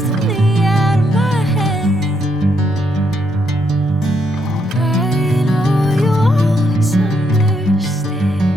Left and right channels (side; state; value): both; normal; correlation 0.76